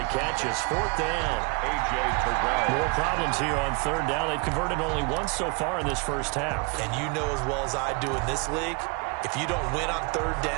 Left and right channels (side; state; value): left; quieter; 31.5 dB